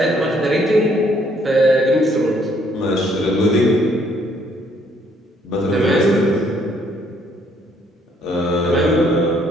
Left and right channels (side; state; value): both; normal; correlation 0.67